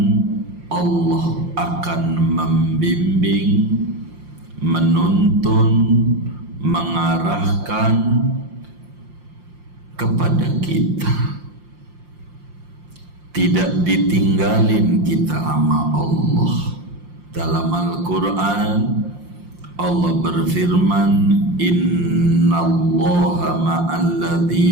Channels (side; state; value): left; late; 5.7 ms